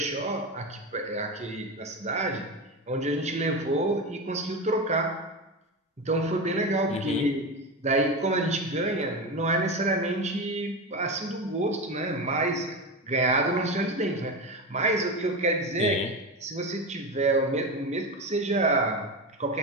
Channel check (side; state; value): both; normal; correlation 0.20